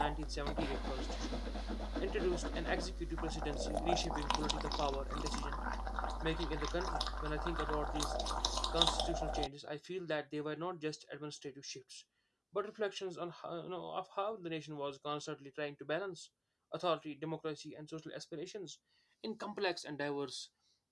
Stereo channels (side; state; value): both; identical; correlation 1.00